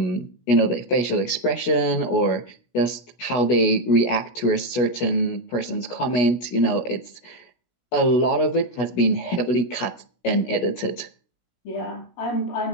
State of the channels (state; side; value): late; right; 17 ms